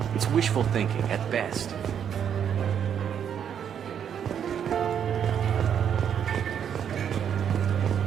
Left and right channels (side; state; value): left; quieter; 8.5 dB